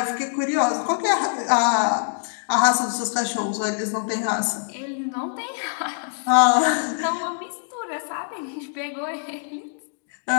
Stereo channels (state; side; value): silent; right; digital silence